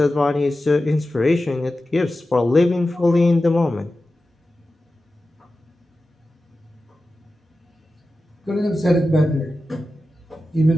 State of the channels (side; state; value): both; normal; correlation 0.93